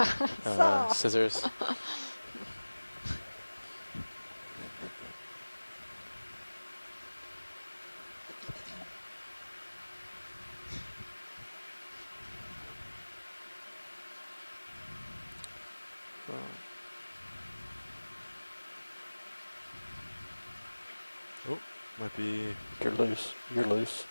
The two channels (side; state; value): both; inverted; correlation -1.00